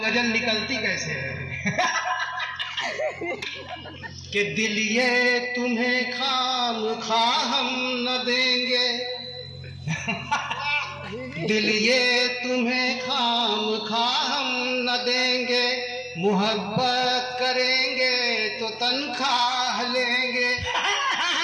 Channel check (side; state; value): both; identical; correlation 1.00